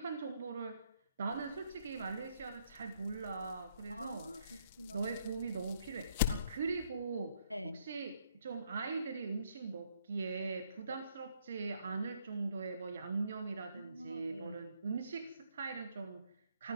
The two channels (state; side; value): inverted; both; correlation -0.70